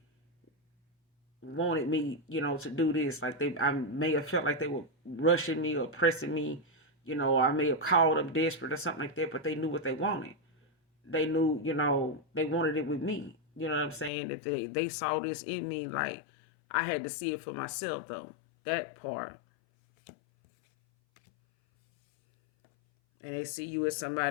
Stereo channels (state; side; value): drops out; right; at 14.1 s